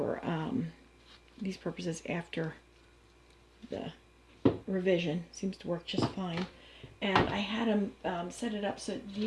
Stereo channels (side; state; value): both; identical; correlation 1.00